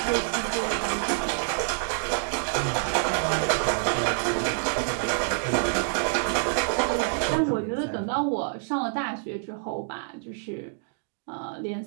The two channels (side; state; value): left; silent; digital silence